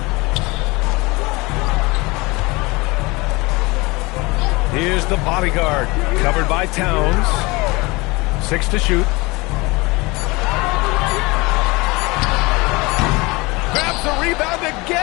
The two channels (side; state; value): right; quieter; 24.2 dB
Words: Here's the bodyguard, covered by Towns. 6 to shoot. Grabs the rebound